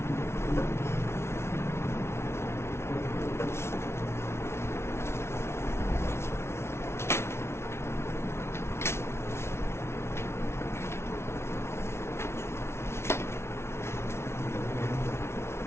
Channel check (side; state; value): right; late; 0.12 ms